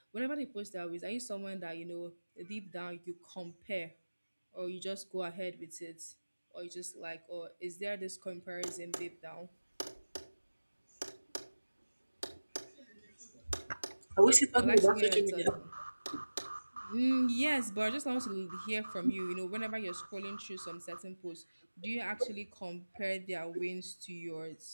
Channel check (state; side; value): inverted; both; correlation -1.00